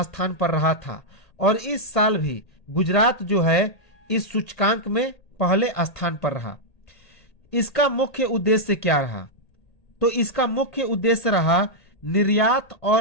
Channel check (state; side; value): late; right; 1.8 ms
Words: पर रहा था, और इस साल भी गुजरात जो है इस सूचकांक में पहले स्थान पर रहा। इसका मुख्य उद्देश्य क्या रहा? तो इसका मुख्य उद्देश्य रहा निर्यात